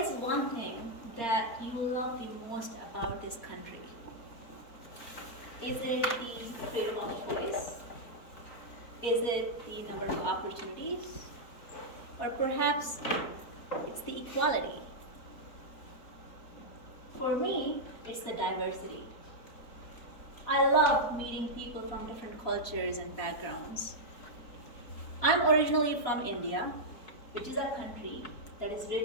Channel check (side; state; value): right; late; 4.2 ms